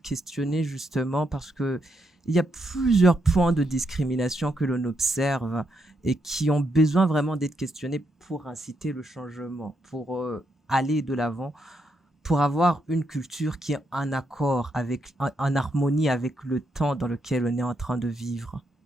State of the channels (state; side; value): normal; both; correlation 0.80